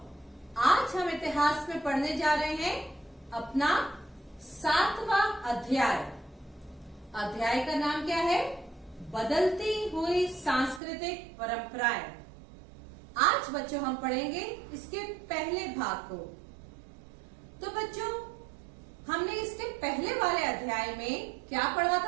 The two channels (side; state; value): left; drops out; at 10.8 s